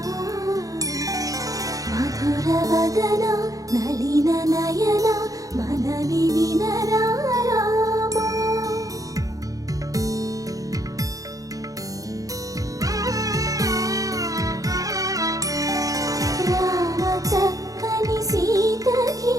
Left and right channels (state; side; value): late; left; 0.17 ms